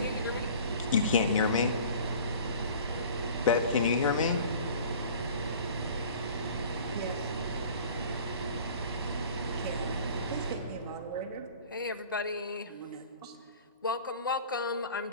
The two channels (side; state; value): both; inverted; correlation -0.46